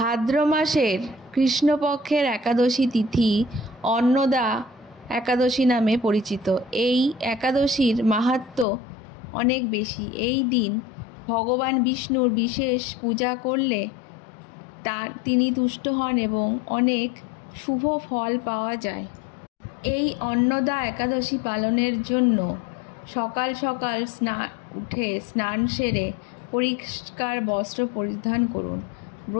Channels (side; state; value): right; drops out; at 8.7 s